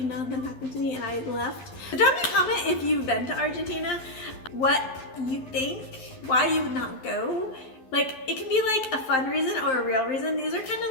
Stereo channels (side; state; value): right; late; 11 ms